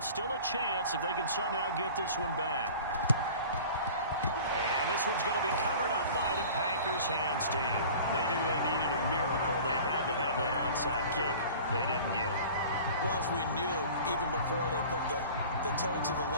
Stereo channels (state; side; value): inverted; both; correlation -0.42